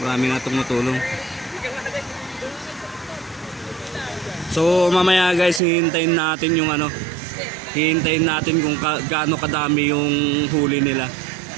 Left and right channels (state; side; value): drops out; left; at 5.6 s